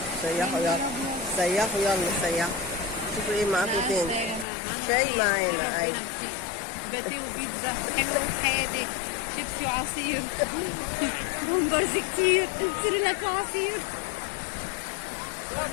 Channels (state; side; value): drops out; right; at 4.5 s